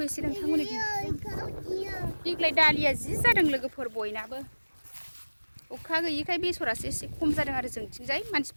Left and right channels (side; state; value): both; inverted; correlation -1.00